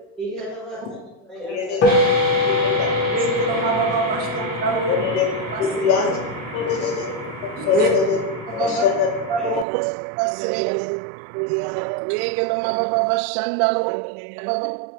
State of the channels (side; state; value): left; drops out; at 9.7 s